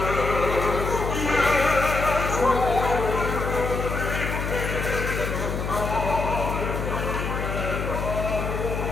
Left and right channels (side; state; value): left; noise; hum, 3 dB below the sound